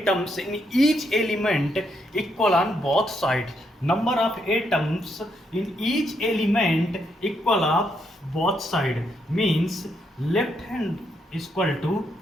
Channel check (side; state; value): both; normal; correlation 0.77